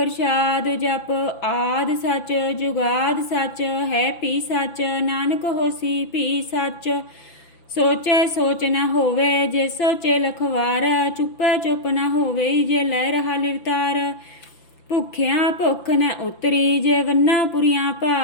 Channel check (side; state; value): right; late; 5.9 ms